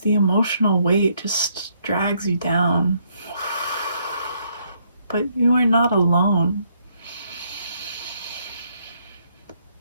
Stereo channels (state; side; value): inverted; both; correlation -0.72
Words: emotional weight just drags you down. But you are not alone.